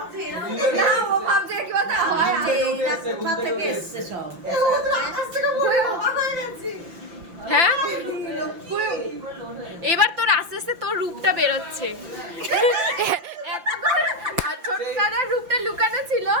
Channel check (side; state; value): left; late; 5.8 ms